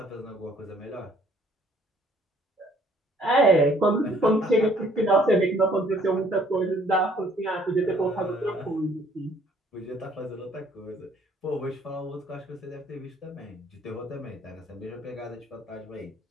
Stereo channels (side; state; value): both; normal; correlation 0.61